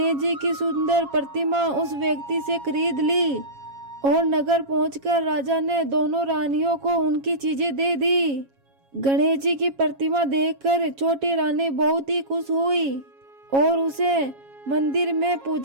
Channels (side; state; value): left; late; 7.3 ms